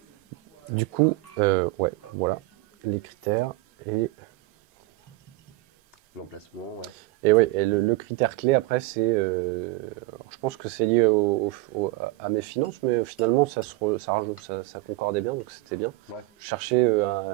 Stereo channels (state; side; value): quieter; left; 20.4 dB